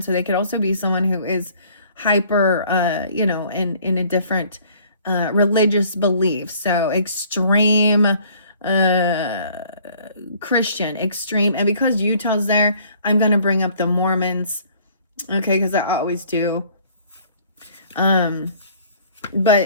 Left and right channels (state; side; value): inverted; both; correlation -0.56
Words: So they could also be someone who is hyper, you know, in a different religious belief. So extreme Christian, extreme. And because Utah's there, I'm going to bring up the Mormons. Okay, because I always do. But